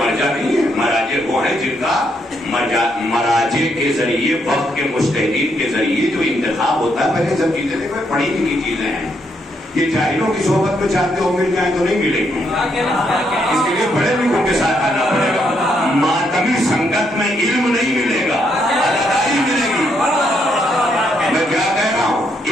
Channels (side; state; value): both; normal; correlation 0.76